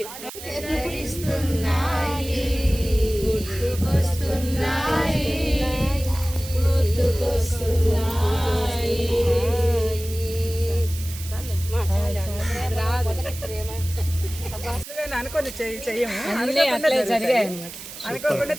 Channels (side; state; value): right; noise; hiss, 12 dB below the sound